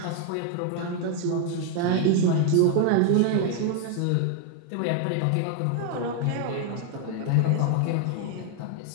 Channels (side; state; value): both; different; correlation 0.00